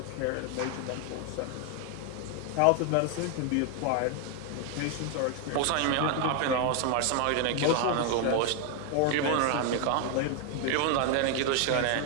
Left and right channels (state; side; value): different; both; correlation 0.00